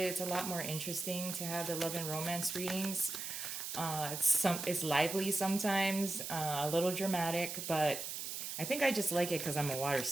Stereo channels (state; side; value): noise; right; hiss, 5 dB below the sound